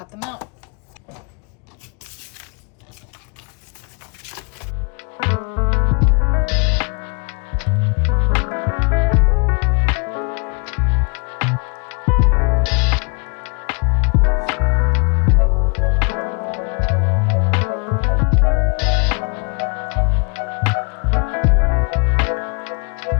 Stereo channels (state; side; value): quieter; right; 33.7 dB